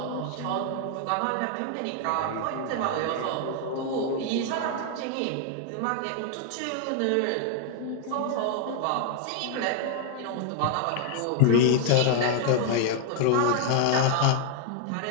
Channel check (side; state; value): both; different; correlation 0.00